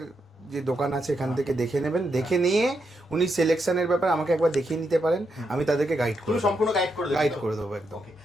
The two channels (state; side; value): normal; both; correlation 0.82